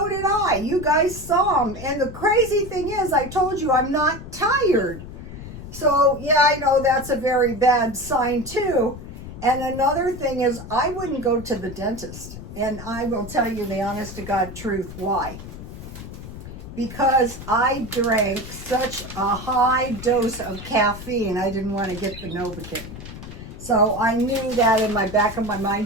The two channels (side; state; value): left; noise; rumble, 12 dB below the sound